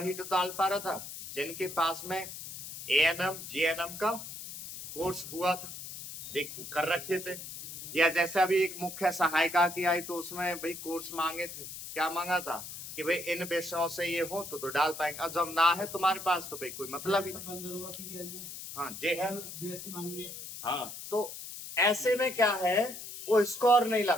तो डाल पा रहा था जिनके पास में एएनएम जीएनएम का कोर्स हुआ था, देख कर रखे थे। या जैसे अभी एक मुख्य सहायिका की आई, तो उसमें भाई कोर्स मांगे थे, क्या मांगा था कि भाई इन विषयों से ये हो तो डाल पाएंगे। अब जब ना है तुम्हारे पास तो भाई कोई मतलब ही नहीं। हाँ जी है, हाँ। तो ऐसे में क्या है, वो स्कोर नहीं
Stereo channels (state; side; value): noise; left; hiss, 10 dB below the sound